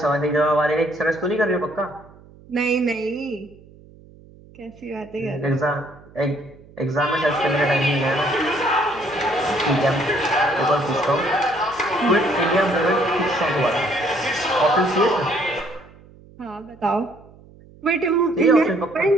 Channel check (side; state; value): right; noise; hum, 24 dB below the sound